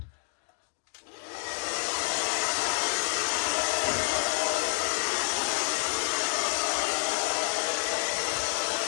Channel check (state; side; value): silent; right; 59 dB below the other